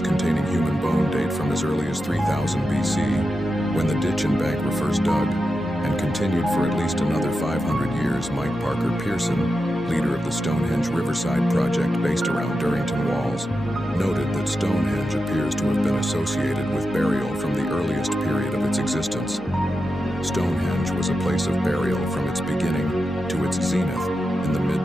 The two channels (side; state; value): both; normal; correlation 0.89